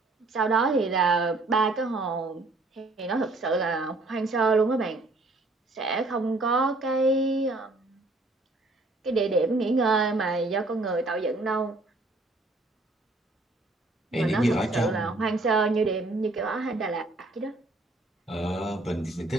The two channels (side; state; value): left; quieter; 3.0 dB